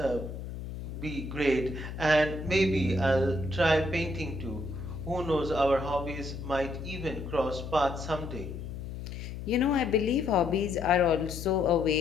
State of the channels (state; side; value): noise; left; hum, 8 dB below the sound